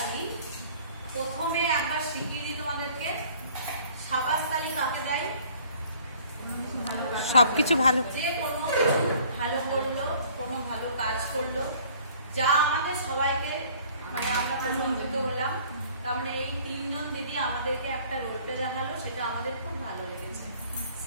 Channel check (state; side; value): inverted; both; correlation -0.54